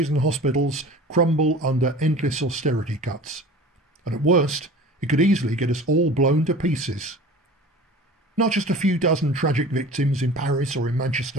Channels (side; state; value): both; normal; correlation 0.40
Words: and hospitals crumble under endless austerity cuts. And at worst, it could easily get us all blown to pieces. Not just a few dozen tragic victims in Paris or in